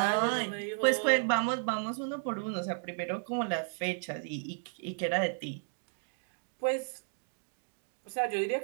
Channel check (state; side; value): silent; left; digital silence